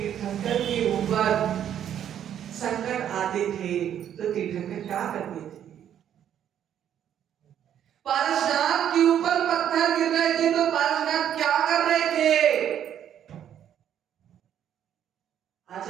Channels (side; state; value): left; quieter; 9.9 dB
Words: के ऊपर संकट आते थे तो तीर्थंकर क्या करते थे? पारसनाथ के ऊपर पत्थर गिर रहे थे तो पारसनाथ क्या कर रहे थे?